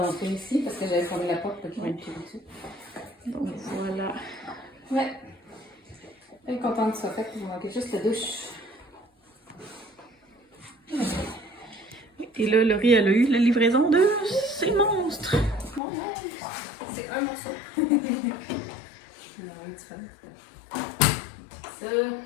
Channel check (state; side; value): drops out; right; at 15.8 s